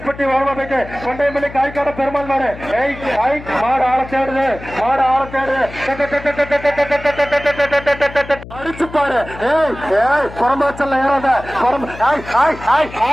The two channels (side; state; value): left; noise; hum, 15 dB below the sound